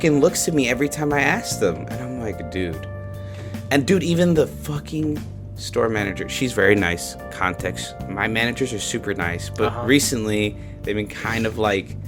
looks to me every time I asked them, and I'm like, dude. And dude, even the fucking store manager, she's very nice. Context, my managers are super nice, but recently they've been kind of like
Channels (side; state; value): both; identical; correlation 1.00